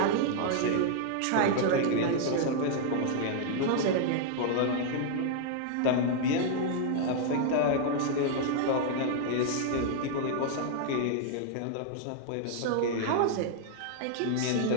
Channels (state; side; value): different; both; correlation -0.01